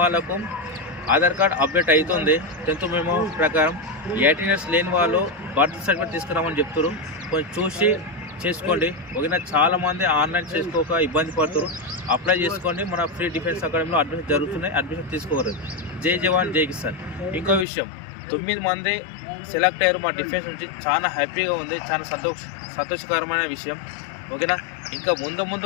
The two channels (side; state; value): right; drops out; at 17.7 s